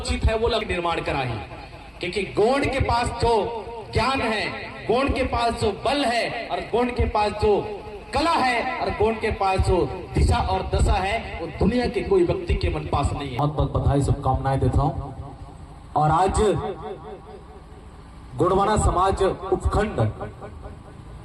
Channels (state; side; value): identical; both; correlation 1.00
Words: है, वो लोग निर्माण कराही। क्योंकि गोंड के पास जो ज्ञान है, गोंड के पास जो बल है, और गोंड के पास जो कला है, और गोंड के पास जो दिशा और दशा है, वो दुनिया के कोई व्यक्ति के मन पास नहीं है। बहुत बहुत बधाई, शुभकामनाएं देता हूँ। और आज गोंडवाना समाज उपखंड